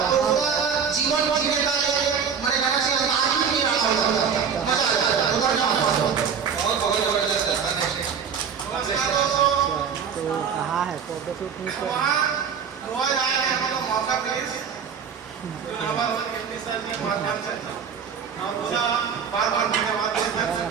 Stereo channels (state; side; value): quieter; left; 7.0 dB